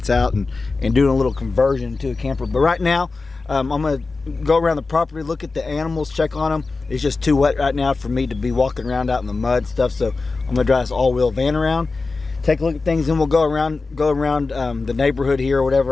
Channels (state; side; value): quieter; right; 3.9 dB